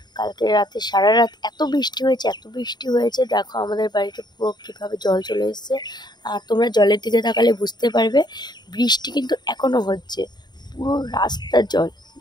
কালকে রাতে সারা রাত এত বৃষ্টি হয়েছে, দেখো আমাদের বাড়িতে পুরো কীভাবে জল চলে এসেছে। আর তোমরা জলের দিকে তাকালে বুঝতে পারবে বৃষ্টি কিন্তু এখনও হচ্ছে, পুরো রাস্তার জল।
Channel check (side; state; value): right; late; 0.21 ms